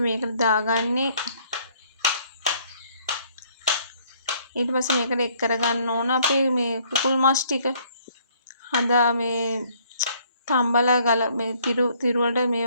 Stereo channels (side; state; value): both; inverted; correlation -0.63